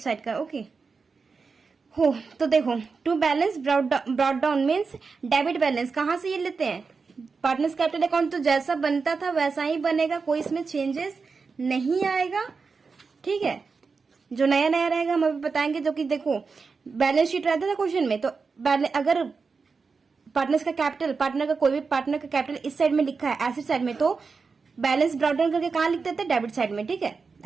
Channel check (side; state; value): left; quieter; 4.8 dB